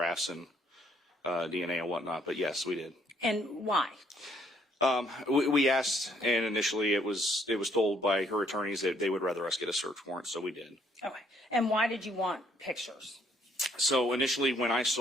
and DNA and whatnot. But yes, we did. And why? We asked, and initially it was told by her attorneys that they would rather us get a search warrant, so we did. Okay. And why did you want pictures? So initially, when I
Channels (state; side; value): normal; both; correlation 0.68